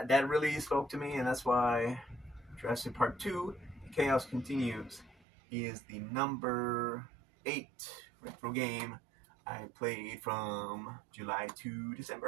really spoke to me, and that's why Jurassic Park 2, Chaos Continues, is the number 8 retro game I played from July to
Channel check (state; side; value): drops out; left; at 5.2 s